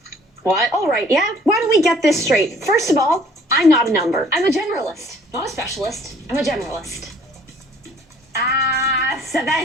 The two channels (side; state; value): both; normal; correlation 0.56